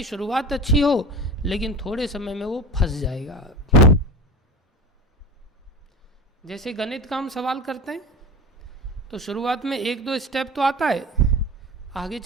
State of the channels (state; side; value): normal; both; correlation 0.31